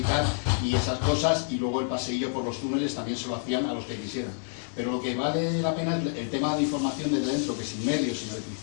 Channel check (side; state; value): right; silent; digital silence